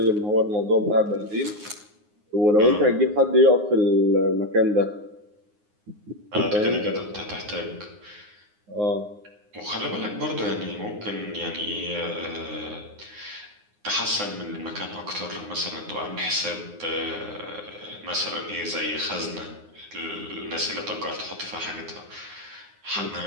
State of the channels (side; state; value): left; late; 9.6 ms